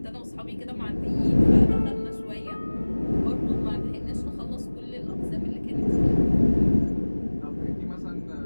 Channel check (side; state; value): both; inverted; correlation -1.00